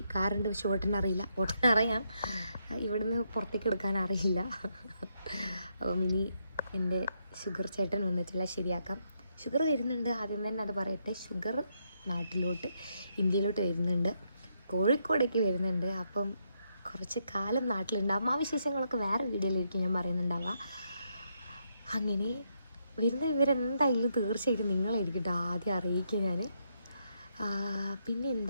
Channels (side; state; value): both; inverted; correlation -0.77